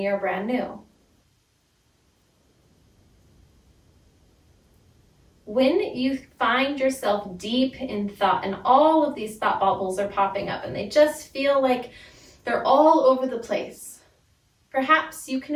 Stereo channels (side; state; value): both; identical; correlation 1.00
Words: are brand new. When you find yourself deep in thought and all of these thought bubbles are popping up and they just feel like they're all over the place, perhaps you can